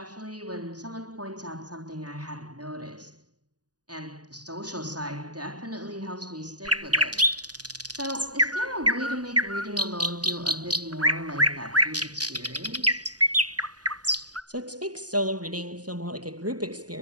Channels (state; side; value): late; left; 0.68 ms